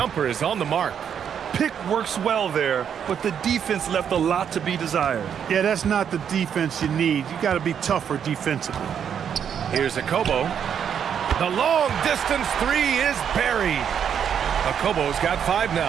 is on the mark. Pick works well there, but the defense left a lot to be desired. Yeah, that's not the defense you need. You got to be tougher defensively. Here's Akobo. The long distance 3 is buried. Akobo's got 5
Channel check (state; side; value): quieter; left; 8.2 dB